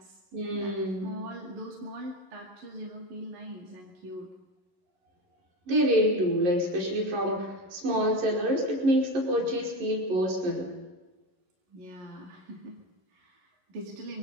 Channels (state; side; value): late; left; 11 ms